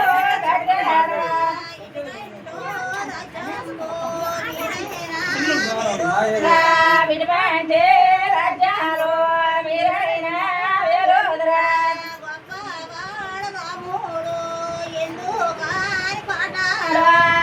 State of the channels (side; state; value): both; identical; correlation 1.00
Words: గడ్డారు విడిపంటే రాజ్యాలు మీరైన వేలుదరా